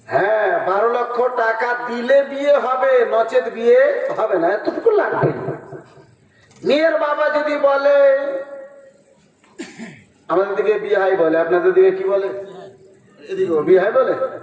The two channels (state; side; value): identical; both; correlation 1.00